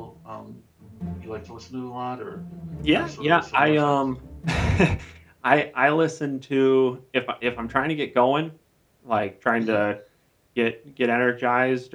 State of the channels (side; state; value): both; identical; correlation 1.00